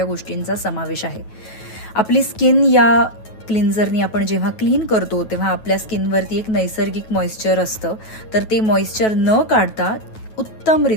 गोष्टींचा समावेश आहे. आपली स्किन या क्लिन्झरनी आपण जेव्हा क्लीन करतो तेव्हा आपल्या स्किनवरती एक नैसर्गिक मॉइश्चर असतं, तर ते मॉइश्चर न काढता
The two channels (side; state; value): right; late; 9.2 ms